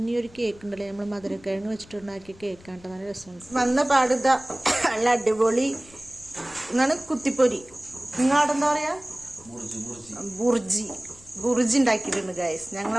ഈ ഒരു കേക്ക് ഉണ്ടല്ലോ, നമ്മൾ മധുരക്കിഴങ്ങ് വെച്ചിട്ടുണ്ടാക്കിയ കേക്കാണ്. നല്ല രസമുണ്ട്. വന്ന പാടുത നല്ല അടിപൊളി എന്നാണ് കുത്തിപ്പൊരി. നിങ്ങളവിടെ എന്താ പറയാ, ബുർജി ഉണ്ടാക്കിയിട്ടുണ്ട് ഗൈസ്.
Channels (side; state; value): left; noise; rumble, 24 dB below the sound